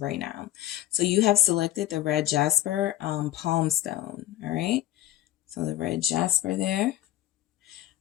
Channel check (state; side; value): quieter; right; 13.8 dB